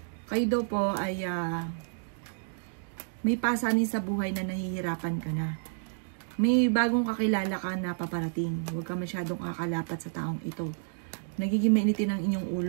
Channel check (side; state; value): left; silent; digital silence